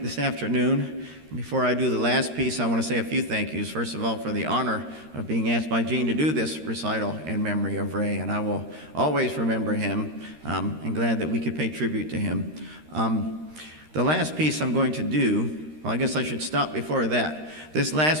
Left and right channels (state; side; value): late; left; 13 ms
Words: this afternoon. Before I do the last piece, I want to say a few thank yous. First of all, for the honor of being asked by Gene to do this recital in memory of Ray, and I will always remember him, and glad that we could pay tribute to him. The last piece I'm going to do, well, I guess I should stop before that. This